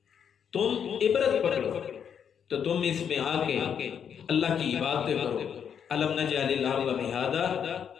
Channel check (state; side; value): quieter; right; 7.9 dB